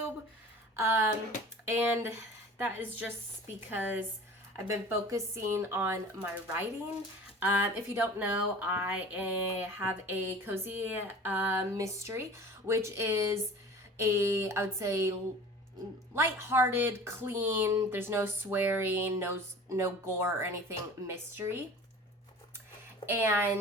And that is just because I've been focusing on my writing. If you don't know, I have a cozy mystery, which is I would say, lighthearted, clean, there's no swearing, no gore or anything, mystery.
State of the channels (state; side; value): normal; both; correlation 0.41